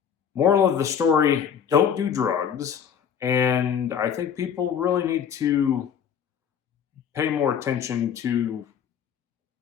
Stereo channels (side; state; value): right; quieter; 8.0 dB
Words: moral of the story, don't do drugs. And I think people really need to pay more attention to